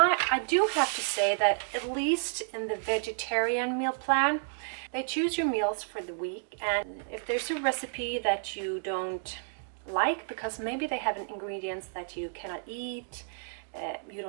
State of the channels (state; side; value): silent; left; digital silence